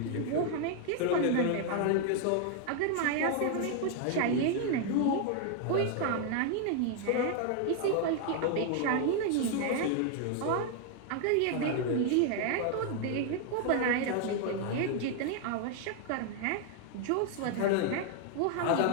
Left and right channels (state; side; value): different; both; correlation 0.00